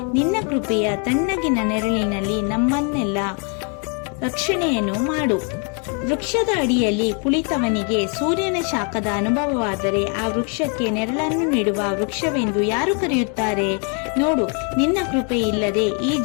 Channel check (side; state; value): right; quieter; 38.2 dB